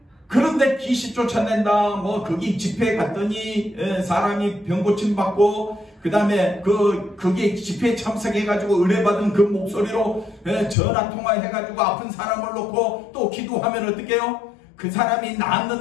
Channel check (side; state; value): right; drops out; at 10.8 s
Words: 그런데 귀신 쫓아낸다 뭐 거기 집회에 갔더니 사람이 병 고침 받고 그 다음에 거기에 집회에 참석해가지고 은혜 받은 그 목소리로 전화 통화해가지고 아픈 사람을 놓고 또 기도하면 어떻게 해요? 그 사람이